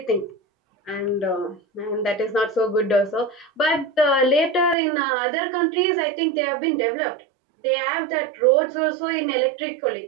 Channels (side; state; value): left; drops out; at 4.8 s